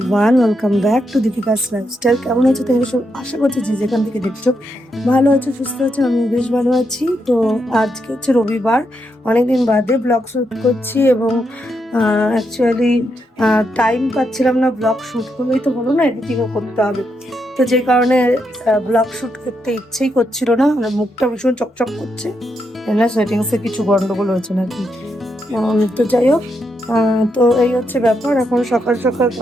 welcome back to Deepika's lifestyle. কেমন আছো তোমরা সব? আশা করছি যে যেখান থেকে দেখছো ভালো আছো, সুস্থ আছো। আমি বেশ ভালো আছি। তো আজকে হচ্ছে রবিবার, অনেকদিন বাদে ব্লগ শ্যুট করছি এবং অ্যাকচুয়ালি টাইম পাচ্ছিলাম না। ব্লগ শ্যুট করলেই তো হলো না, এডিটিংও করতে হবে। তো যে কারণে ব্লগ শ্যুট করতে ইচ্ছেই করছিল না। আমার মুখটা ভীষণ চকচক করছে, না সেটিংসে কিছু গন্ডগোল হয়েছে নাকি। তো যাই হোক, তো এই হচ্ছে ব্যাপার। এখন সকাল সকাল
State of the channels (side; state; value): both; normal; correlation 0.81